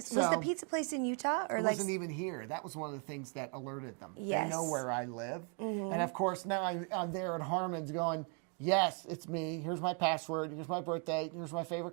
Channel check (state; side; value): quieter; left; 38.1 dB